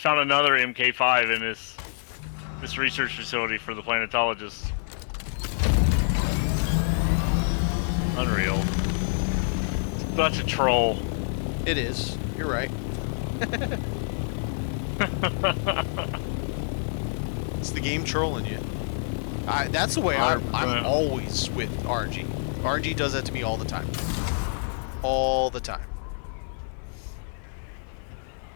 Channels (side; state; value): right; silent; 55 dB below the other